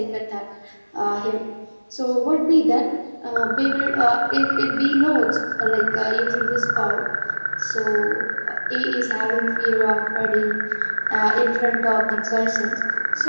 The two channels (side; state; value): both; inverted; correlation -1.00